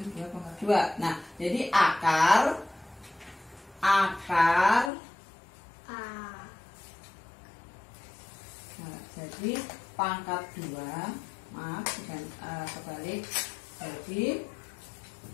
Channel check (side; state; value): right; drops out; at 4.9 s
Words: 2 pangkat 2. Nah, jadi akar jadi pangkat 2, maaf bukan kebalik, jadi